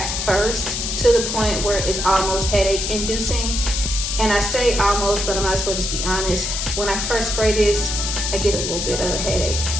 first, to the point where it's almost headache inducing. And I say almost, but I might as well just be honest. When I first spray this, I get a little bit of a headache,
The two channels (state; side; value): noise; left; hiss, 2 dB below the sound